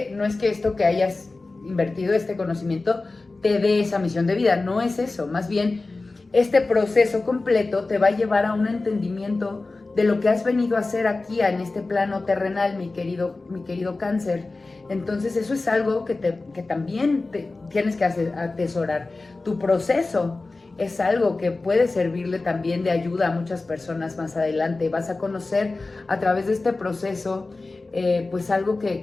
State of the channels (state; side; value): quieter; right; 3.4 dB